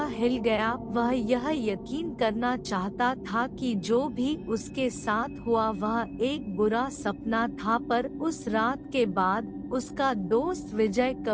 हिल गया। वह यह यकीन करना चाहता था कि जो भी उसके साथ हुआ वह एक बुरा सपना था, पर उस रात के बाद उसका दोस्त विजय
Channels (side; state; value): both; identical; correlation 1.00